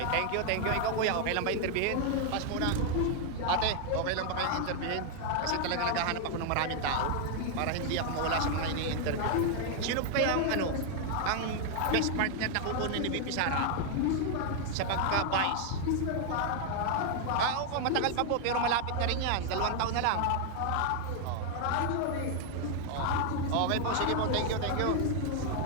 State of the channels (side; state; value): both; different; correlation 0.00